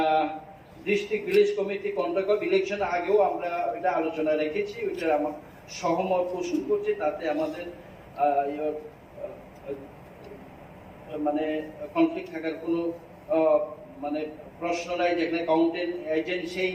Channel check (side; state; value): both; identical; correlation 1.00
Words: district village committee contract of election, আগেও আমরা এটা আলোচনা রেখেছি, ওইটা আমার সহমত পোষণ করছি। তাতে আমাদের মানে কনফ্লিক্ট থাকার কোনো মানে প্রশ্ন নাই, যেখানে কাউন্টিং এজেন্ট সেই